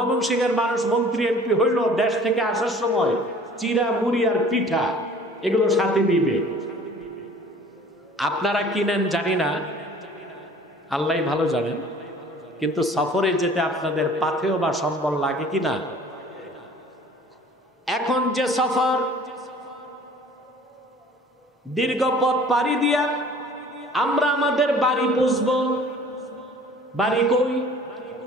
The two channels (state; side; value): normal; both; correlation 0.49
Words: মানুষ মন্ত্রী এমপি হইল দেশ থেকে আসার সময় চিরা মুড়ি আর পিঠা এগুলো সাথে নিবে। আপনারা কিনেন জানি না, আল্লাহ ভালো জানেন, কিন্তু সফরে যেতে আপনাদের পাথেও বা সম্বল লাগে কিনা? এখন যে সফর, দীর্ঘ পথ পাড়ি দিয়া আমরা আমাদের বাড়ি পৌঁছব। বাড়ি কই?